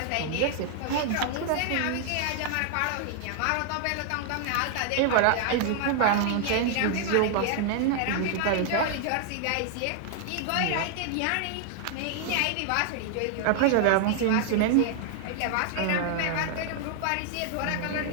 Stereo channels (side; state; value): both; different; correlation 0.00